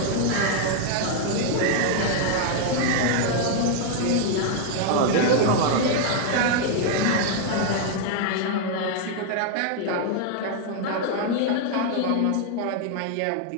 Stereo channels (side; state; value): both; different; correlation 0.00